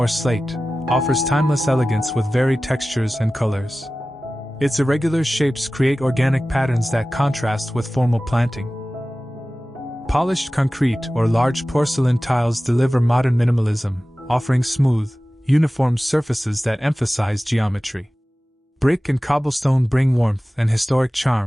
slate, offers timeless elegance with varied textures and colors. Its irregular shapes create organic patterns that contrast with formal planting. Polished concrete or large porcelain tiles deliver modern minimalism, offering smooth, uniform surfaces that emphasize geometry. Brick and cobblestone bring warmth and historic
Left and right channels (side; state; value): both; normal; correlation 0.96